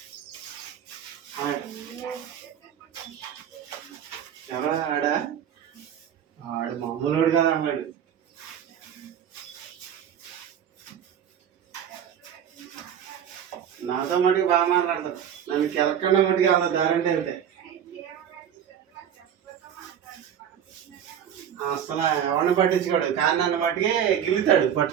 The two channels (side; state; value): left; quieter; 9.1 dB